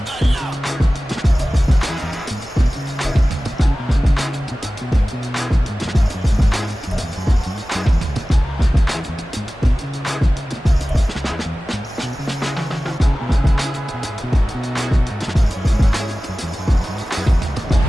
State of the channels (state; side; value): normal; both; correlation 0.96